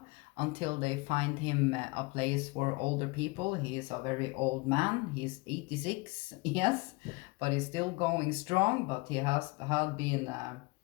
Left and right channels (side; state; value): right; quieter; 25.6 dB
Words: until they find him a place for older people. He is a very old man. He's 86, yes, but he's still going strong. But he has had been